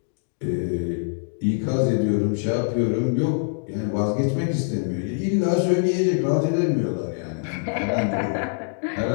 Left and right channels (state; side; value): silent; right; digital silence